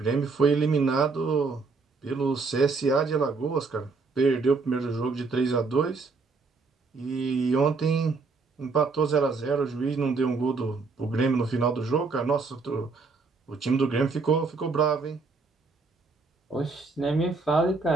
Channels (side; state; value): left; quieter; 4.2 dB